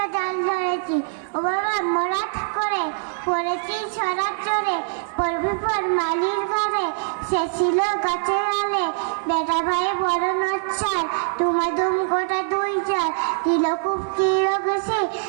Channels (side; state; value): left; silent; digital silence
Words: জাল ধরেছি। ও বাবা মরাত করে পড়েছি ছড়ার চড়ে, পড়বি পর মালির ঘরে, সে ছিল গাছের আলে। বেটা ভাই বড় নচ্ছার, দুমাদুম গোটা দুই চার, দিল খুব কিলো খুশি,